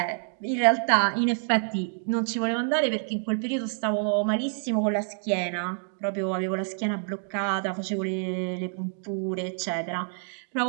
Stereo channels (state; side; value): silent; left; digital silence